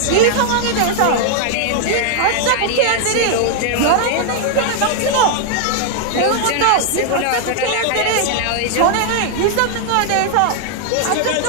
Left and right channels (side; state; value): both; different; correlation 0.00